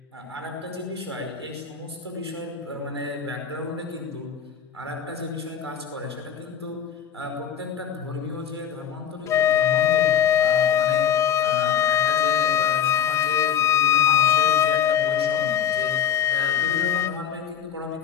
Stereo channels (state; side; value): quieter; right; 8.8 dB